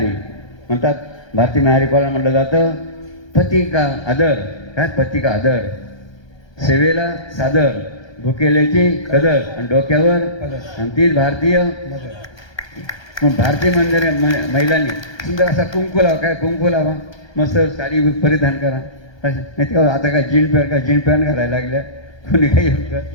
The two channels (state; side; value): late; right; 1.3 ms